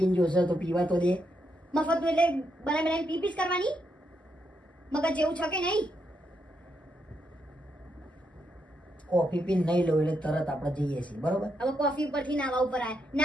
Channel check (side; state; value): both; normal; correlation 0.80